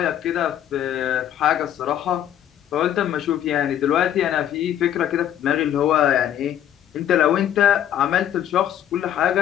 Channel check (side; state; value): right; quieter; 10.8 dB